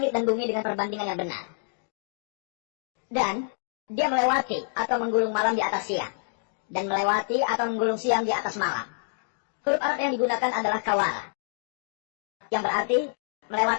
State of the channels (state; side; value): silent; right; digital silence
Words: dan bumi dengan perbandingan yang benar. Dan dia melewati atau menggulung malam di atas siang. Dan melewati atau menggulung siang di atas malam. Huruf Arab yang digunakan adalah kawala, yang berarti